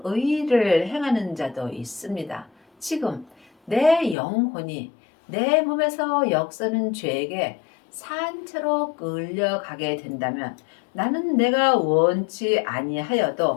의를 행하는 자도 있습니다. 지금 내 영혼이 내 몸에서 역사는 죄에게 산채로 끌려가게 된다면 나는 내가 원치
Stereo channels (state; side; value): drops out; right; at 4.2 s